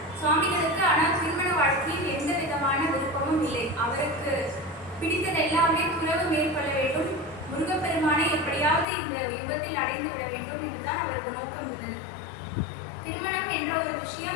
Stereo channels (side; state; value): right; drops out; at 8.8 s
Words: சுவாமிகளுக்கு ஆனால் திருமண வாழ்க்கையில் எந்த விதமான விருப்பமும் இல்லை. அவருக்கு பிடித்தது எல்லாமே துறவு மேற்கொள்ள வேண்டும், முருகப்பெருமானை எப்படியாவது இந்த யுகத்தில் அடைந்து விட வேண்டும் என்றுதான் அவருக்கு நோக்கம் இருந்தது. திருமணம் என்ற ஒரு